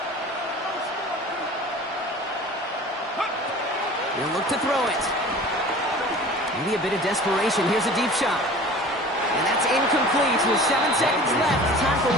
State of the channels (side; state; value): both; normal; correlation 0.42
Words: He'll look to throw it. Maybe a bit of desperation. Here's a deep shot. And that's incomplete with 7 seconds left. Time for